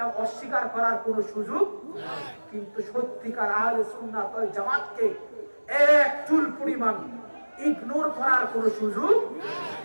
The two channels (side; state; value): both; inverted; correlation -1.00